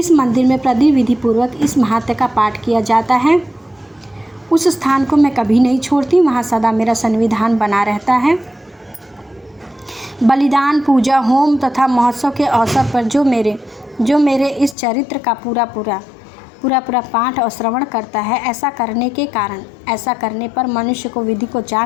मंदिर में विधि पूर्वक इस महात्म्य का पाठ किया जाता है, उस स्थान को मैं कभी नहीं छोड़ती। वहाँ सदा मेरा सन्निधान बना रहता है। बलिदान, पूजा, होम तथा महोत्सव के अवसर पर जो मेरे इस चरित्र का पूरा पाठ और श्रवण करता है, ऐसा करने पर मनुष्य को विधि को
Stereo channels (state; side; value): drops out; right; at 14.8 s